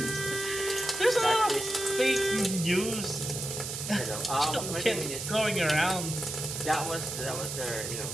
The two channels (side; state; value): right; noise; hiss, 5 dB below the sound